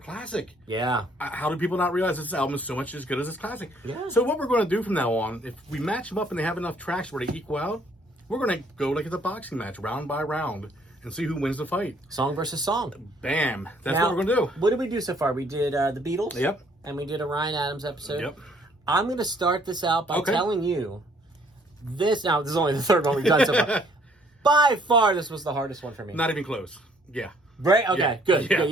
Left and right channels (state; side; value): normal; both; correlation 0.62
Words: Yeah. How do people not realize this album is so much as good as its classic? Yeah. So what we're going to do from now on, if we match them up and they have enough tracks where they equal out, we're going to go like it's a boxing match, round by round, and see who wins the fight. Song versus song. Bam. That's Now, what we're going to do. What did we do so far? We did the Beatles. Yep. And we did a Ryan Adams episode. Yep. I'm going to start this out by telling you this. Now, this is only the third one we've done so far. By far, this was the hardest one for me. Not even close. Yeah. Right? Okay, yeah. good. Yeah.